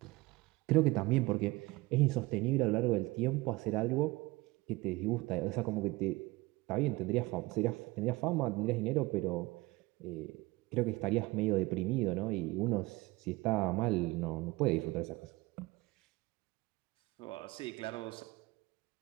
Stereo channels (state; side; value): quieter; left; 21.8 dB